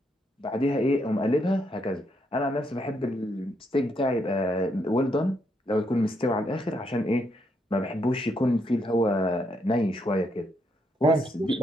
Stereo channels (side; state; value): both; normal; correlation 0.76